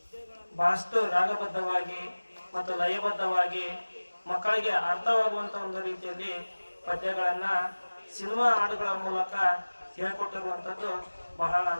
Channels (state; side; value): inverted; both; correlation -1.00